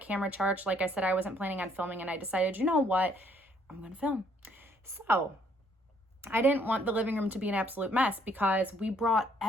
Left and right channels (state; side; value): normal; both; correlation 0.66